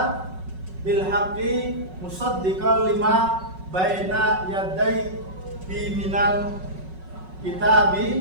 bil haqqi musaddiqan lima baina yaday minal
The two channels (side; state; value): left; late; 5.4 ms